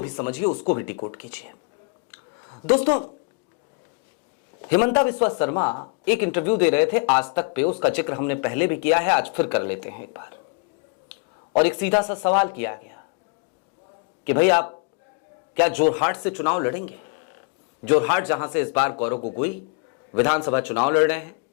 भी समझिए, उसको भी डिकोड कीजिए। दोस्तों, हिमंता बिस्वा शर्मा एक इंटरव्यू दे रहे थे आज तक पे, उसका जिक्र हमने पहले भी किया है, आज फिर कर लेते हैं एक बार। और एक सीधा सा सवाल किया गया कि भाई आप क्या जोरहाट से चुनाव लड़ेंगे? जोरहाट जहां से इस बार गौरव गोगोई विधानसभा चुनाव लड़ रहे हैं,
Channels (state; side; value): quieter; right; 33.5 dB